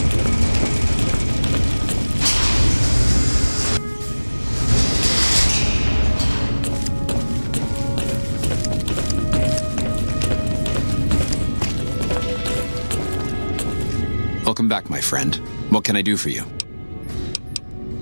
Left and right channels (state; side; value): inverted; both; correlation -1.00